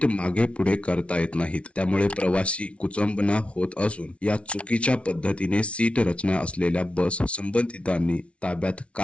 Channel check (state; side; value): late; right; 0.061 ms